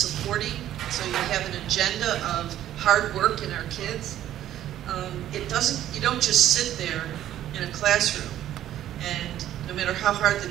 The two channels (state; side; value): quieter; left; 12.2 dB